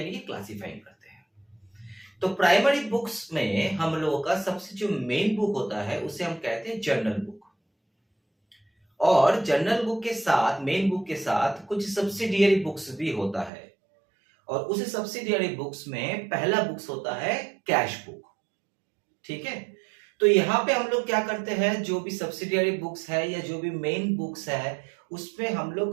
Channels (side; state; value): left; drops out; at 13.5 s